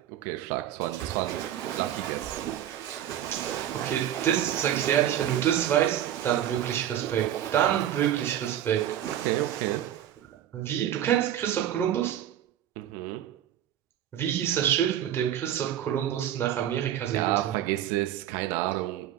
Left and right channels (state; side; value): quieter; left; 11.2 dB